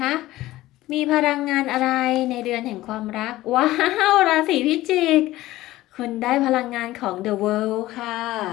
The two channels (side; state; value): right; quieter; 16.5 dB